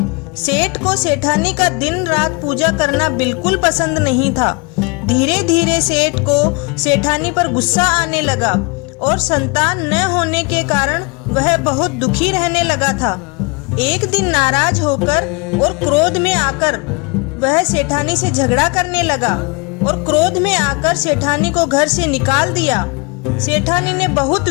सेठ को सेठानी का दिन रात पूजा करना बिल्कुल पसंद नहीं था। धीरे धीरे सेठ को सेठानी पर गुस्सा आने लगा और संतान न होने के कारण वह बहुत दुखी रहने लगा था। एक दिन नाराज होकर और क्रोध में आकर वह सेठानी से झगड़ा करने लगा और क्रोध में आकर सेठानी को घर से निकाल दिया। सेठानी ने बहुत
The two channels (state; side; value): quieter; right; 29.1 dB